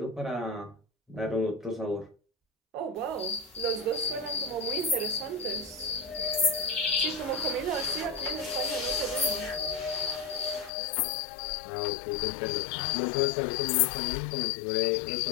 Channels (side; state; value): right; drops out; at 10.7 s